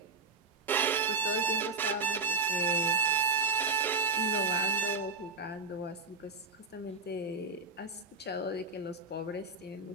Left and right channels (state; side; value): quieter; left; 4.1 dB